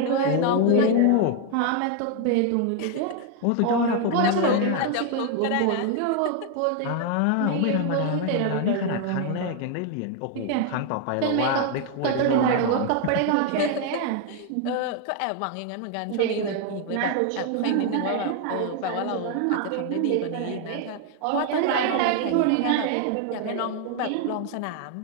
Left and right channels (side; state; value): both; different; correlation 0.01